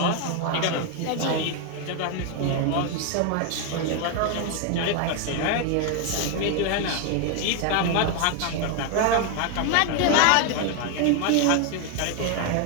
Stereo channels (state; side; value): different; both; correlation 0.01